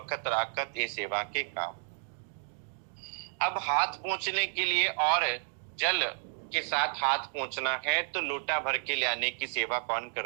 राकत ये सेवा के काम। अब हाथ पहुंचने के लिए और जल के साथ हाथ पहुंचना है तो लोटा भर के ले आने की सेवा कौन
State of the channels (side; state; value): left; silent; digital silence